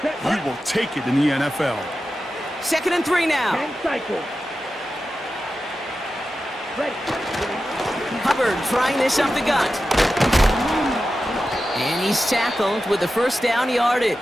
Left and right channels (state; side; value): normal; both; correlation 0.92